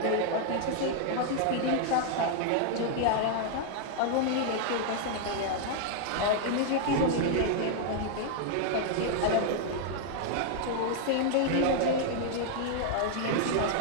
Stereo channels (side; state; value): both; different; correlation 0.00